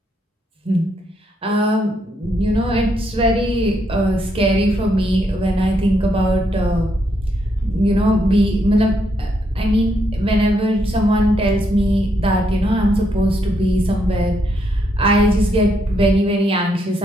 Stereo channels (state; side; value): normal; both; correlation 0.77